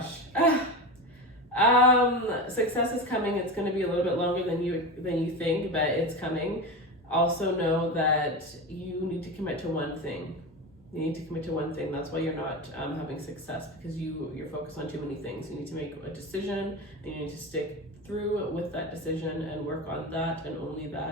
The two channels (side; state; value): both; normal; correlation 0.23